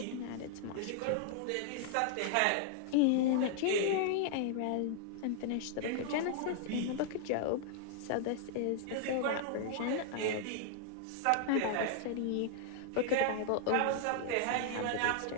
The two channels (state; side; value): different; both; correlation 0.00